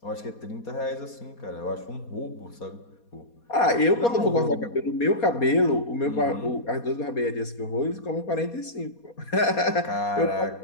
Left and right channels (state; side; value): late; right; 4.2 ms